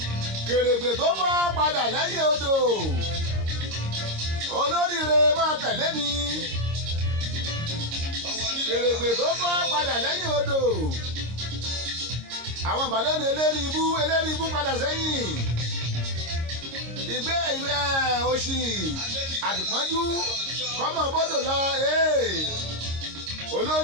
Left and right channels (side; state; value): left; late; 26 ms